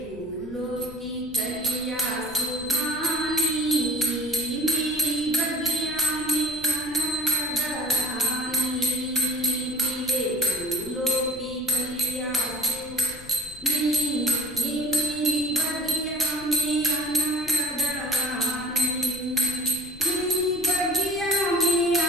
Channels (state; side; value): noise; left; rumble, 19 dB below the sound